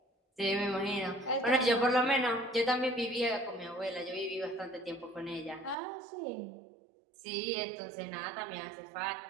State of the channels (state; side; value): drops out; left; at 5.8 s